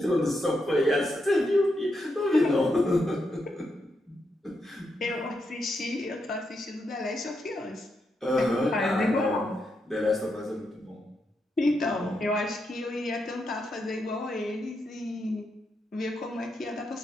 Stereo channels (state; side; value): normal; both; correlation 0.83